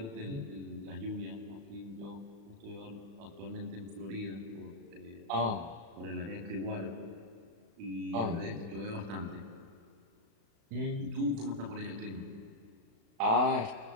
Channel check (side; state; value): left; late; 36 ms